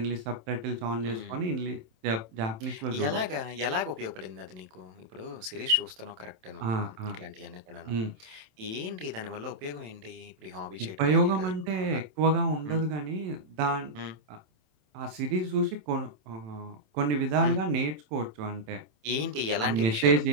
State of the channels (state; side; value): late; left; 27 ms